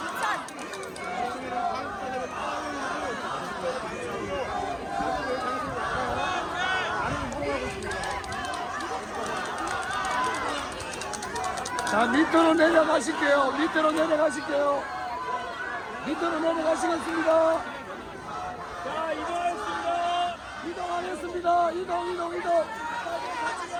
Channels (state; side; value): identical; both; correlation 1.00